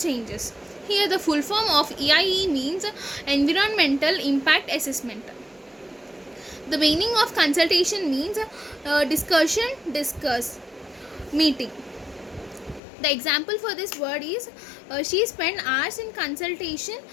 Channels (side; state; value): right; drops out; at 12.8 s